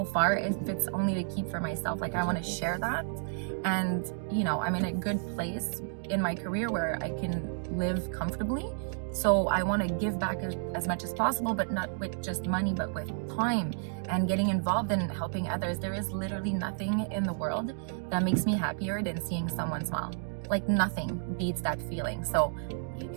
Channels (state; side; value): silent; left; digital silence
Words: far if it's only to keep for myself? Like, I want to share that. And I'm in a good place in my career where I can live comfortably. So I want to give back as much as possible, but not with just money, but with time and getting involved in helping others. There is literally nothing in the world that makes me happier than seeing someone smile. Like, nothing beats that feeling. So you